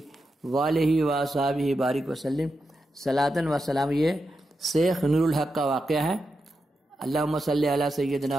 وآلہ وصحبہ بارک وسلم صلاۃ و سلام۔ یہ شیخ نور الحق کا واقعہ ہے۔ اللہم صلی علی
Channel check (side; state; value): both; normal; correlation 0.88